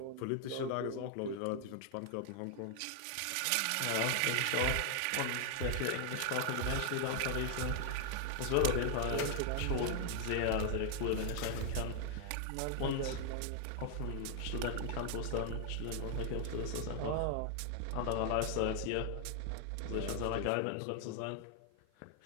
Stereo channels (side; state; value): both; different; correlation 0.00